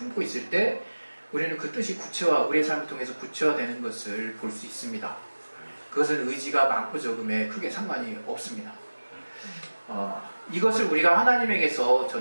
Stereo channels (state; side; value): inverted; both; correlation -1.00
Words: 있을 때 우리는 그 뜻이 우리의 삶을 통해서 구체화되는 것을 볼 수 있습니다. 그것은 의지가 많고 적음에 크게 상관이 없습니다. 이것을 우리가 하나님에게서